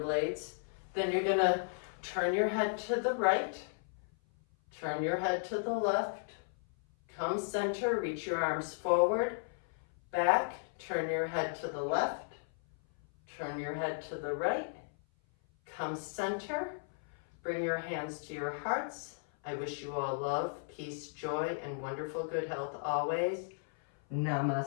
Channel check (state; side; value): silent; right; 54 dB below the other